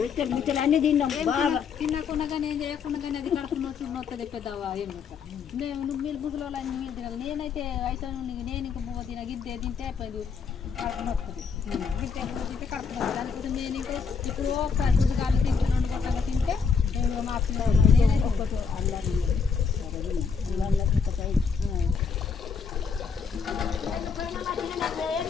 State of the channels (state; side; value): quieter; right; 5.9 dB